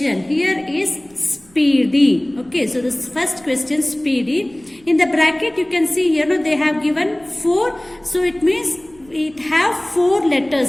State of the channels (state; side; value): noise; right; rumble, 28 dB below the sound